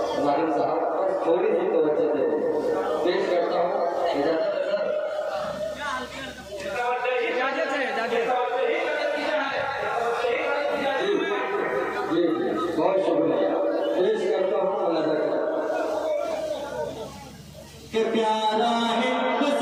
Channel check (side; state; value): both; identical; correlation 1.00